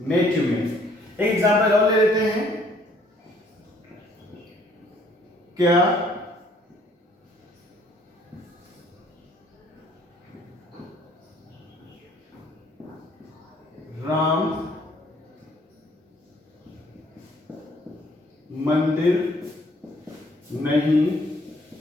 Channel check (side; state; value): both; normal; correlation 0.62